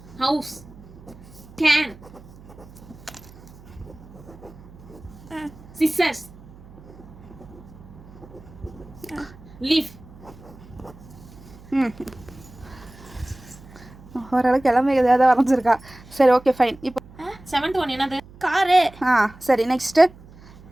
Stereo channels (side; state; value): right; noise; hum, 21 dB below the sound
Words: house, can, scissors, leaf. ஓரளவுக்கு எல்லாமே எதாவது வரைஞ்சிருக்கா. சரி, ஓகே, ஃபைன். இப்போ 7th ஒன் என்னது? காரு. சரி, நெக்ஸ்ட்டு